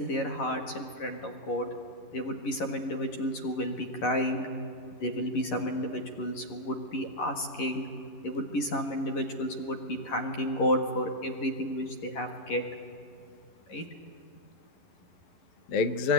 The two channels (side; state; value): right; late; 11 ms